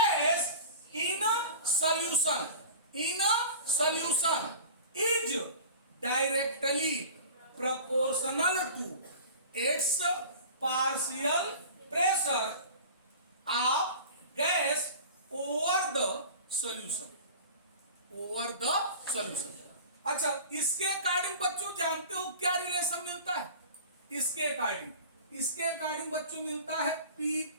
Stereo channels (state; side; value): inverted; both; correlation -0.38